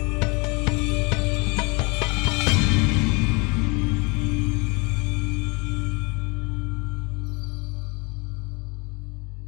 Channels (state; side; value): quieter; right; 29.0 dB